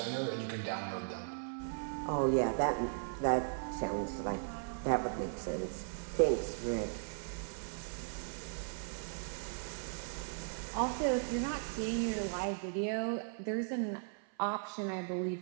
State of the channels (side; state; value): left; silent; 53 dB below the other